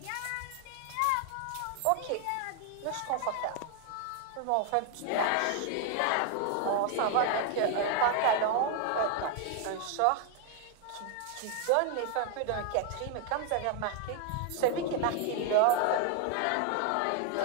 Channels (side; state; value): both; different; correlation 0.00